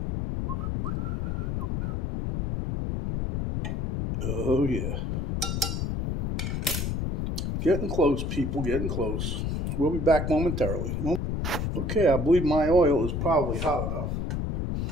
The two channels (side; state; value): left; noise; rumble, 1 dB below the sound